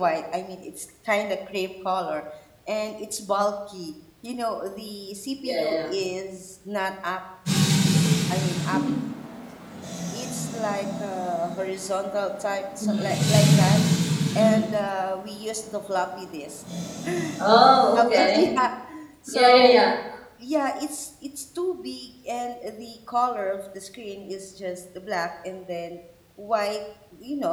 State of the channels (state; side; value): identical; both; correlation 1.00